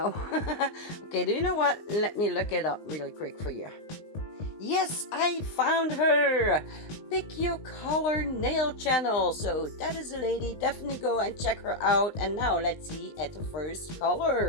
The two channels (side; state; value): right; late; 19 ms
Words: Okay, do you know what? Let me look it up really quick for you. Yes, I found her! Pick Your Color Nail Channel. So that is a lady. Definitely go and check her out. And now let's see at the first